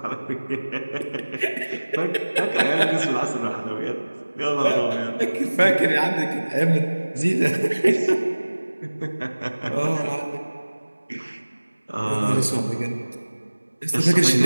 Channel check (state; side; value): inverted; both; correlation -1.00